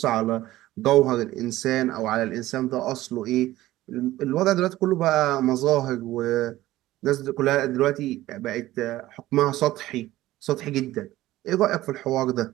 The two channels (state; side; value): quieter; left; 16.0 dB